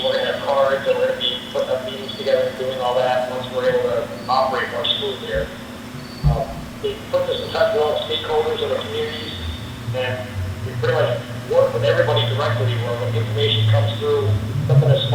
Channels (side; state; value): both; identical; correlation 1.00